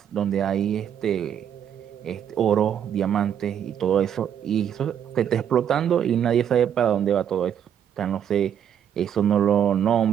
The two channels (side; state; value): left; quieter; 9.1 dB